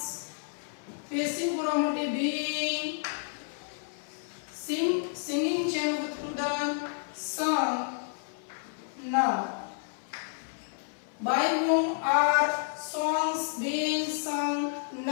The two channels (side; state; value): right; silent; 58 dB below the other